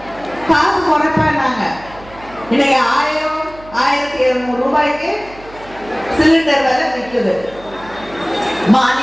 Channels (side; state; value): right; noise; hum, 20 dB below the sound